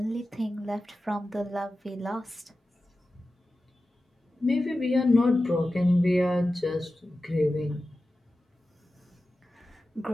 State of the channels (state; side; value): normal; both; correlation 0.94